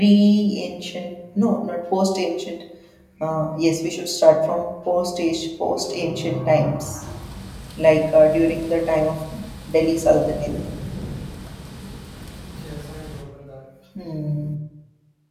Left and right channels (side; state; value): both; identical; correlation 1.00